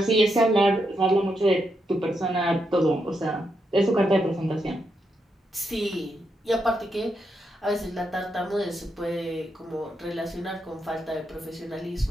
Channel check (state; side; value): normal; both; correlation 0.82